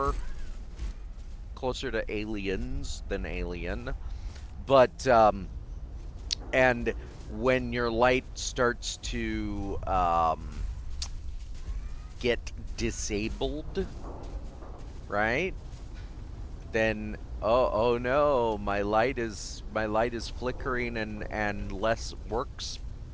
Closer to aliens than alien. But and when your light starts to get disabled, right? Then oh no, my light is flickering and works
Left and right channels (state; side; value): identical; both; correlation 1.00